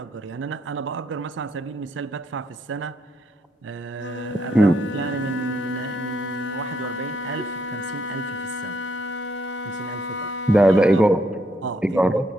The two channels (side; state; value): both; normal; correlation 0.74